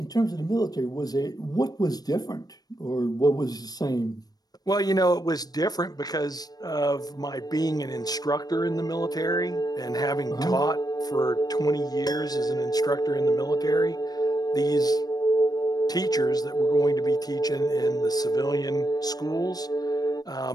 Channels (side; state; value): right; late; 0.19 ms